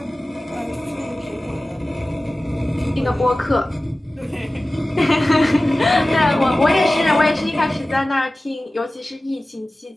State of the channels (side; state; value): both; normal; correlation 0.96